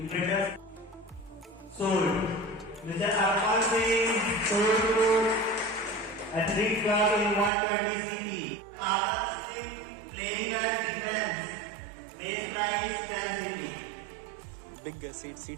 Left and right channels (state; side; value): drops out; left; at 7.5 s